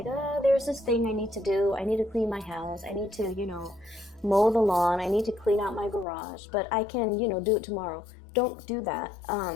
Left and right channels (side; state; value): right; drops out; at 6.1 s